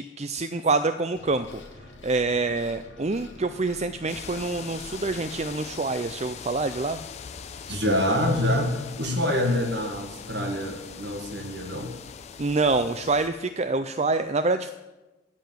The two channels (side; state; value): both; normal; correlation 0.20